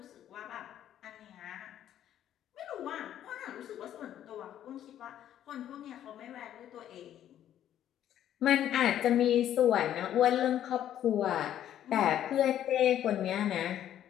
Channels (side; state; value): right; quieter; 11.1 dB